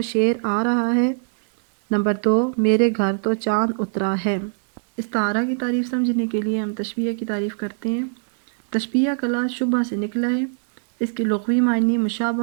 شیر آ رہا ہے، نمبر 2 میرے گھر تو چاند اترا ہے۔ استعارہ کی تعریف سمجھنے کے لیے ہم تشبیہ کی تعریف کرتے ہیں۔ تشبیہ کا لفظ شبہ سے نکلا ہے، اس کے لغوی معنی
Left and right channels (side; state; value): left; silent; digital silence